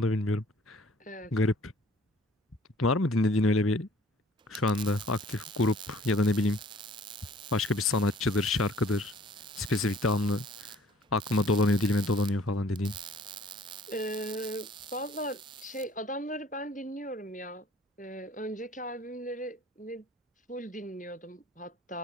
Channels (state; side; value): normal; both; correlation 0.55